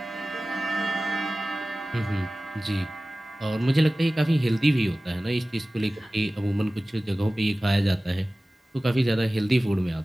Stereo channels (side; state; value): both; normal; correlation 0.97